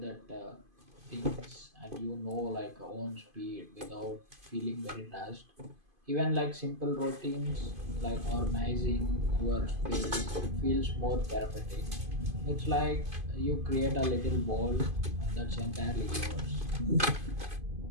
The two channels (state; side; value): late; left; 2.5 ms